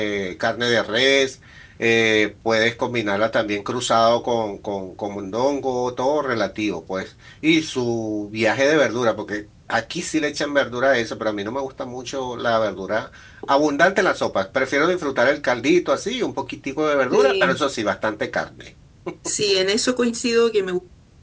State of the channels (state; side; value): identical; both; correlation 1.00